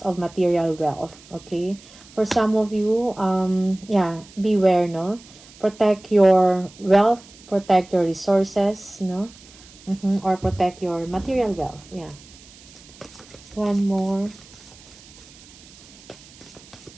of material wealth. Okay? For some of you, yeah, beware, no? Protect your wealth, protect your resources, no? Or protect your material wealth. Yeah. One more.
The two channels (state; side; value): noise; right; hiss, 22 dB below the sound